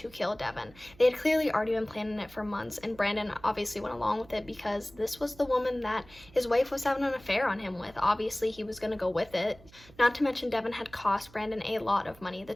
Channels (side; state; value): right; noise; hum, 24 dB below the sound